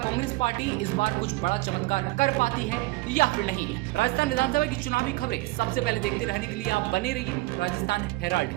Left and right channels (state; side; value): quieter; left; 21.8 dB